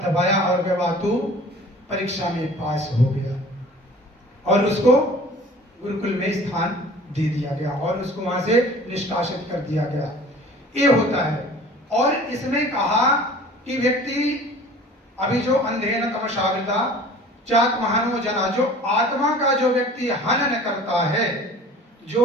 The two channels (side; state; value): both; normal; correlation 0.46